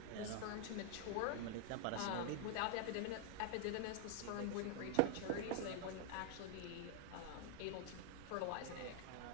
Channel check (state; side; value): different; both; correlation 0.00